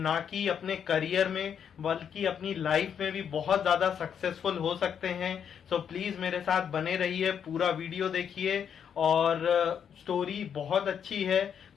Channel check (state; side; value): quieter; right; 8.0 dB